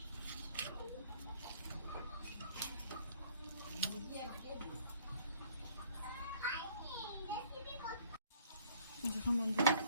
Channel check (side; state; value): both; inverted; correlation -0.58